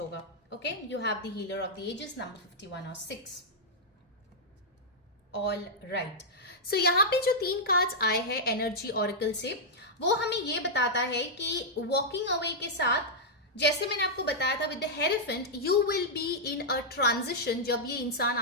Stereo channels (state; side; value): normal; both; correlation -0.07